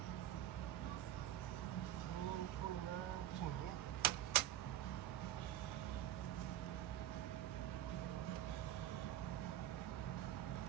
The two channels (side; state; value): left; quieter; 12.3 dB